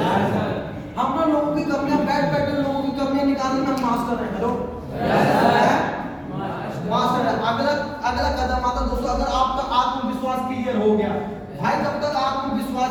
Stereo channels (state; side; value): identical; both; correlation 1.00